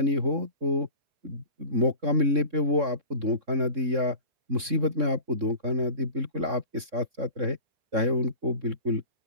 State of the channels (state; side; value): late; left; 3.6 ms